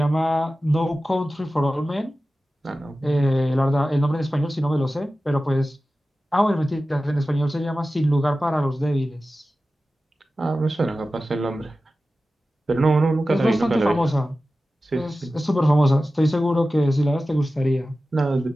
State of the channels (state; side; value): normal; both; correlation 0.95